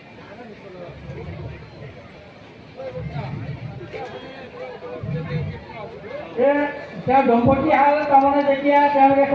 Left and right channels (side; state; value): both; identical; correlation 1.00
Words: তেওঁ দম্পতী হাল তাৰমানে যেতিয়া তেওঁলোকে